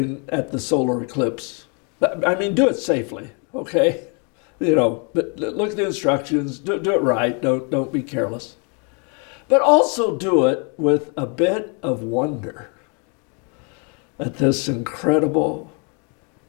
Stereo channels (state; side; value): quieter; right; 36.2 dB